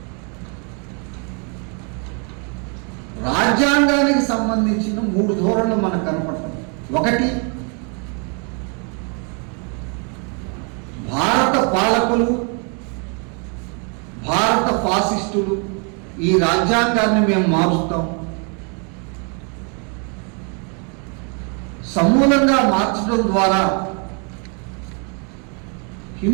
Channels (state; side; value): quieter; left; 37.4 dB